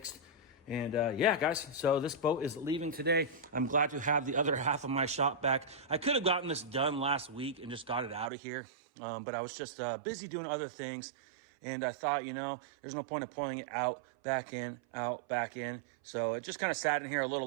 And yeah, guys, so this boat is leaving today. I'm glad to have the other half of my shop back. I could have gotten this done last week and just got it out of here, but I was just busy doing other things. And I thought, you know, there's no point of pulling it out, back in, out, back in. So it just kind of sat in here a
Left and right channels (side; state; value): left; drops out; at 8.3 s